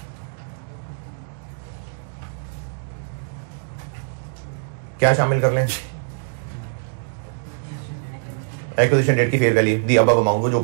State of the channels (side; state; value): left; silent; digital silence